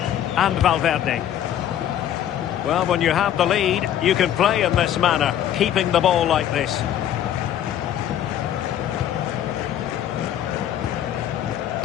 And Valverde. Well, when you have the lead, you can play in this manner, keeping the ball like this.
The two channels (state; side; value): quieter; right; 10.8 dB